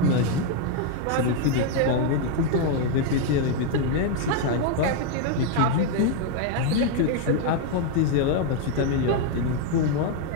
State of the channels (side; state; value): both; different; correlation 0.01